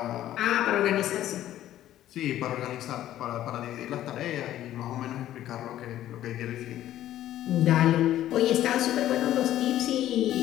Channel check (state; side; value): quieter; right; 12.8 dB